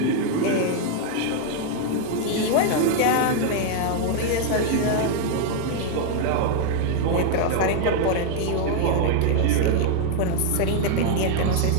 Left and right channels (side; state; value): both; different; correlation 0.00